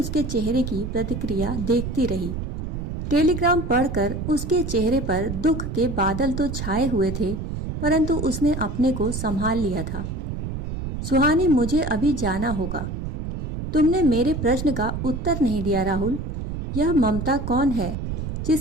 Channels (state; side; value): noise; right; rumble, 5 dB below the sound